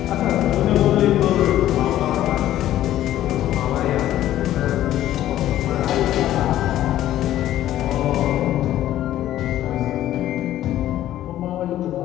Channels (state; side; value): quieter; right; 13.1 dB